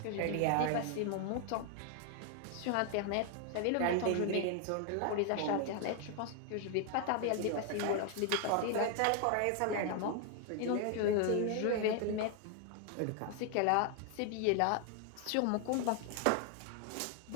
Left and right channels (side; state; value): both; different; correlation 0.00